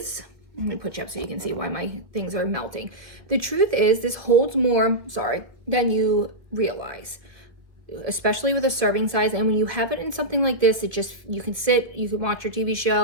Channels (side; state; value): left; late; 1.6 ms